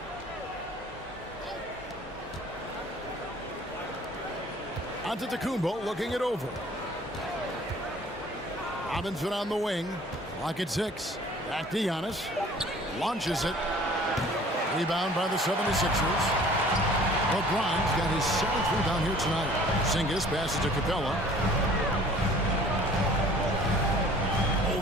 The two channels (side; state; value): both; normal; correlation 0.51